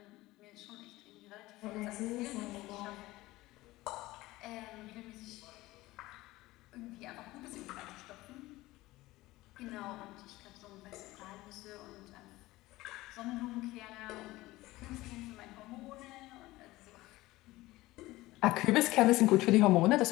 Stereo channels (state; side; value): quieter; right; 18.5 dB